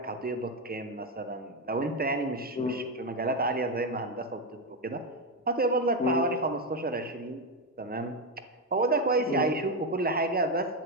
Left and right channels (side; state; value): both; normal; correlation 0.08